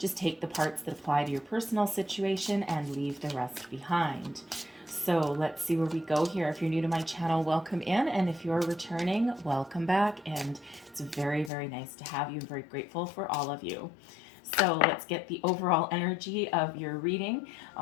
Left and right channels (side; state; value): right; drops out; at 11.5 s